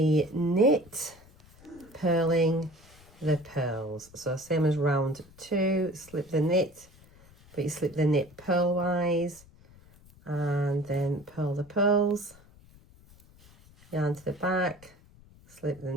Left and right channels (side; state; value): left; noise; rumble, 25 dB below the sound